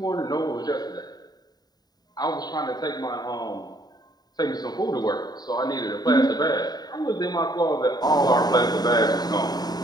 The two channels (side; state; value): right; late; 0.19 ms